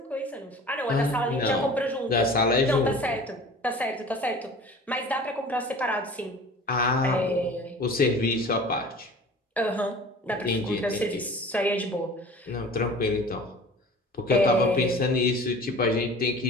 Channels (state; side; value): normal; both; correlation 0.42